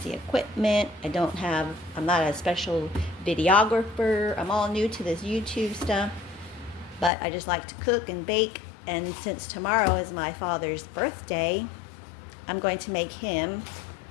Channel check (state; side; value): drops out; right; at 7.1 s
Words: equipment. I'm not a special videographer. I'm all new to this YouTube stuff, but I just like to cook and bake. And since tomorrow is my father's birthday, I'm going to make him